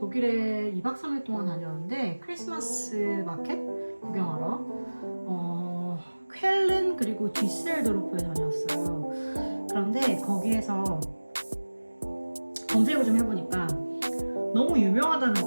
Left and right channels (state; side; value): inverted; both; correlation -1.00